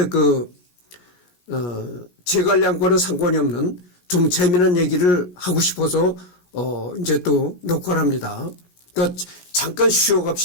재관량과는 상관이 없는 좀 재미난 얘기를 하고 싶어서 이제 또 녹화를 합니다. 그러니까 잠깐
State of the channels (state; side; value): late; right; 17 ms